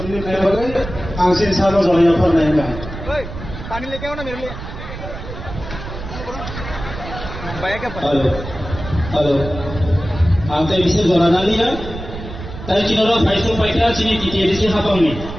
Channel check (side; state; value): right; noise; rumble, 10 dB below the sound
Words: kaya bagai angsin sama zonya पर नहीं है पानी लेके आओ ना मेरे लिए हेलो हेलो आमते विशेष गणना लिया ताई चिनोरा फाइसो पाइटा चिनी टीटीएडीसी हापांगनि